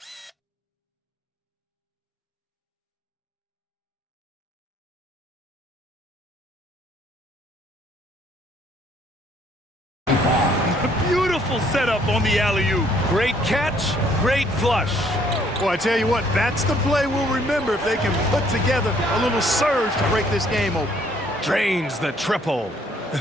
Beautiful setup on the alley-oop. Great catch, great flush. Well, I tell you what, that's the play we'll remember if they can put together a little surge to break this game open. Drains the triple.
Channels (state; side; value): normal; both; correlation 0.64